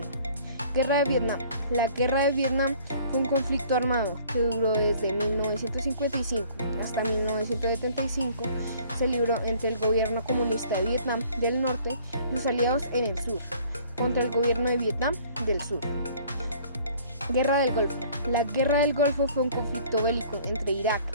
Guerra de Vietnam. La guerra de Vietnam fue un conflicto armado que duró desde 1955 hasta 1975. Se libró entre el gobierno comunista de Vietnam del Norte y sus aliados en el sur, contra el gobierno de Vietnam del Sur. Guerra del Golfo. La Guerra del Golfo fue un conflicto bélico entre Irak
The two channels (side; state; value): both; inverted; correlation -0.54